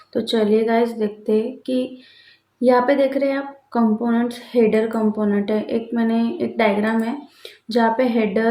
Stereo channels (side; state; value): both; identical; correlation 1.00